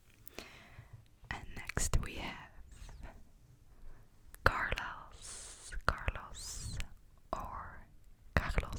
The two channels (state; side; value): identical; both; correlation 1.00